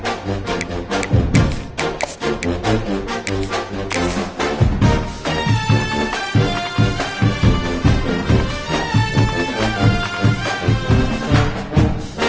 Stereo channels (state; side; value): identical; both; correlation 1.00